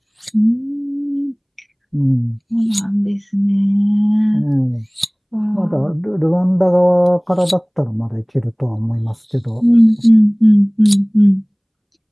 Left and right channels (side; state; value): both; identical; correlation 1.00